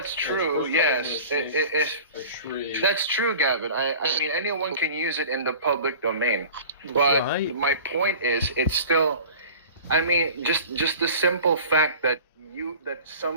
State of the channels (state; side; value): inverted; both; correlation -0.41